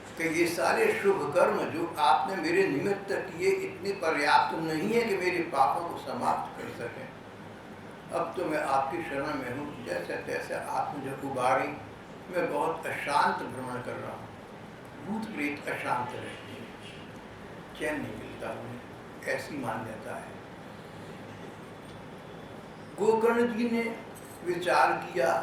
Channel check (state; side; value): identical; both; correlation 1.00